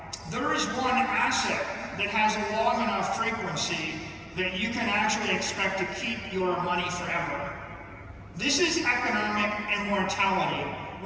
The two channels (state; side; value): identical; both; correlation 1.00